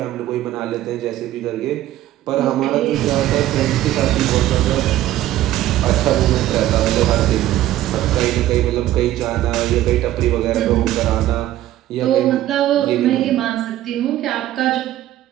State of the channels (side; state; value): left; quieter; 13.9 dB